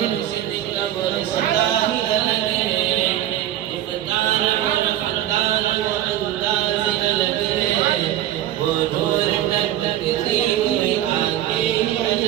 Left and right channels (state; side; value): quieter; left; 12.5 dB